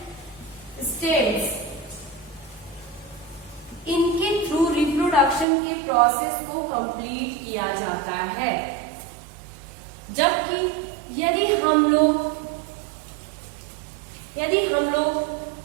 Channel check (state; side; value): drops out; left; at 5.5 s